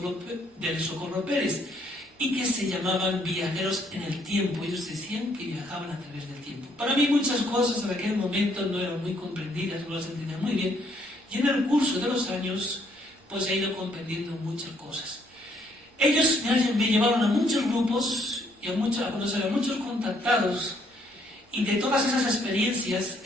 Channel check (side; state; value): both; normal; correlation 0.68